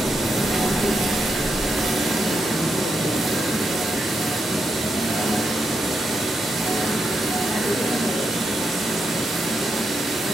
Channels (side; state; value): both; normal; correlation 0.83